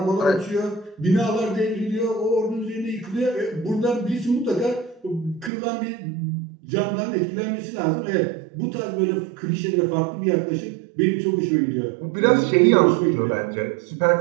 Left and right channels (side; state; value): left; drops out; at 5.5 s